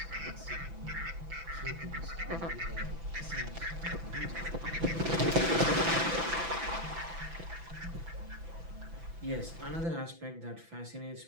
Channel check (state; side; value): late; left; 6.0 ms